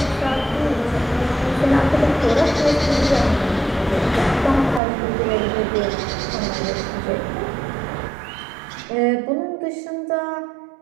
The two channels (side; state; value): left; drops out; at 4.8 s